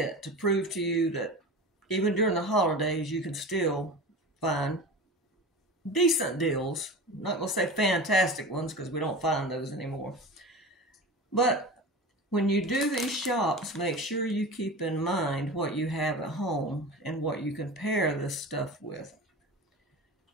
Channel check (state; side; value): normal; both; correlation 0.31